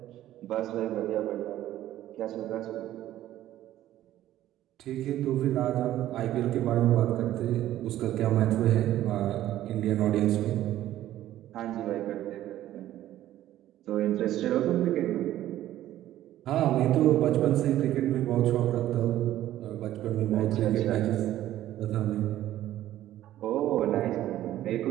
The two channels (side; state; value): left; quieter; 13.4 dB